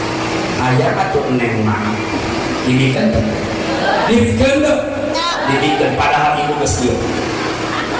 aya atuh neng mak didikeun didikeun padahal ibu geus kieu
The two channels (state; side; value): noise; left; hum, 23 dB below the sound